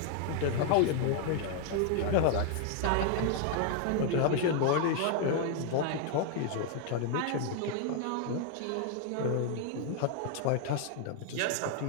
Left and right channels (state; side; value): different; both; correlation 0.00